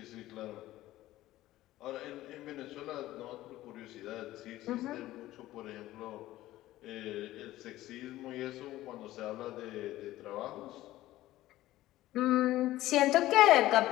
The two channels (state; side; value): quieter; right; 15.6 dB